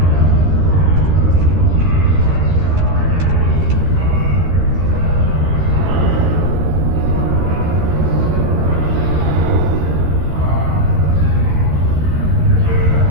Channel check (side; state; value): left; late; 13 ms